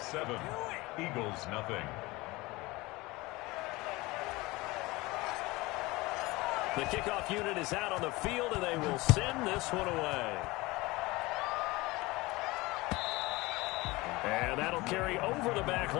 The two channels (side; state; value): right; quieter; 21.7 dB